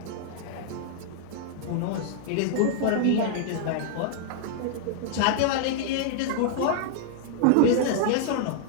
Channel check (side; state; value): both; different; correlation -0.01